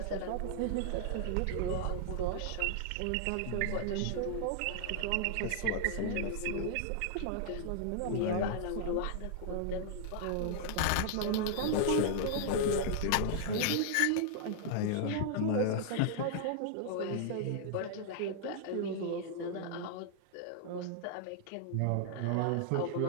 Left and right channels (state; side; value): different; both; correlation -0.01